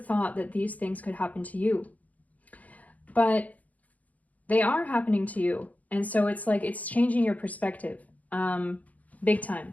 that these things could happen to you. But they are happening to you. And so it's like, it's changing your perspective, big time.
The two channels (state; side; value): late; right; 0.074 ms